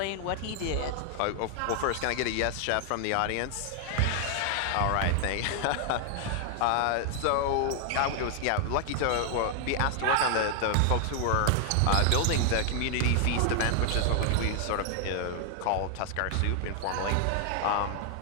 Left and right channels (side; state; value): both; different; correlation 0.00